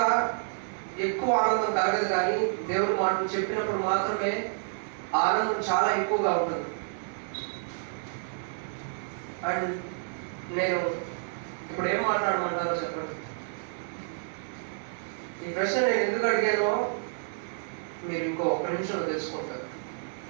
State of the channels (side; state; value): left; silent; digital silence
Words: ఎక్కువ ఆనందం కలగదు, కానీ దేవుడు మాటలు చెప్పినప్పుడు మాత్రమే ఆనందం చాలా ఎక్కువగా ఉంటుంది. అండ్ నేను ఇప్పుడు ఏం మాట్లాడమంటారో చెప్పండి. ఈ ప్రశ్న నేను ఎందుకు అడిగానో మీరు ఇంకో 1 నిమిషంలో తెలుసుకుంటారు.